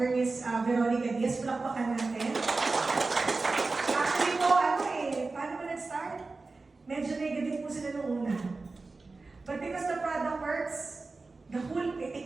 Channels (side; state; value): left; quieter; 3.7 dB